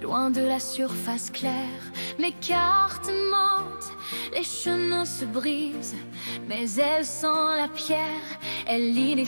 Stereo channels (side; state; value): both; inverted; correlation -1.00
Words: loin de la surface claire. Les cartes mentent, les chemins se brisent, mais elle sent la pierre, elle lit les